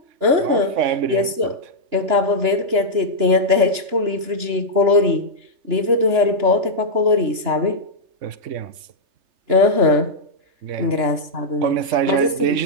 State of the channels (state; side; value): late; left; 2.9 ms